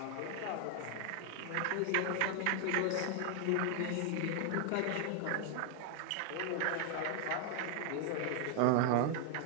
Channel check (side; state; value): both; different; correlation 0.00